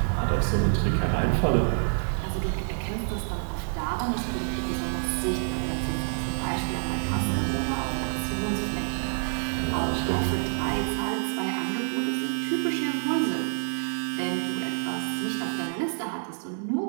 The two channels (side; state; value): left; silent; 60 dB below the other